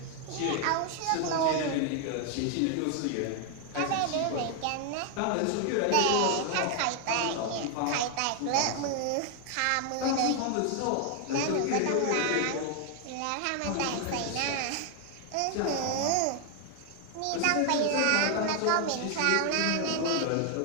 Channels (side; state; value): both; different; correlation 0.00